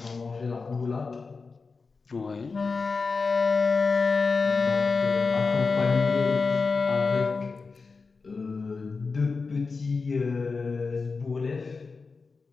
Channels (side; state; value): right; quieter; 4.5 dB